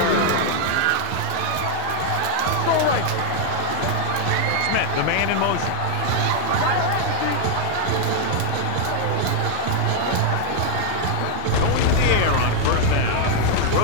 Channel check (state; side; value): different; both; correlation 0.00